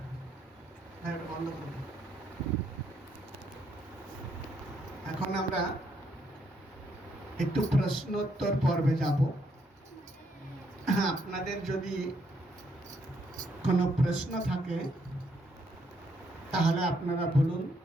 বন্ধ করব। এখন আমরা একটু প্রশ্নোত্তর পর্বে যাব। আপনাদের যদি কোনো প্রশ্ন থাকে তাহলে আপনারা বলুন,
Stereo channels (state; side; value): normal; both; correlation 0.74